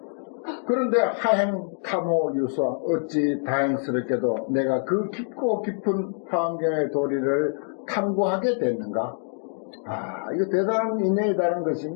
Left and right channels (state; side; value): silent; right; 61 dB below the other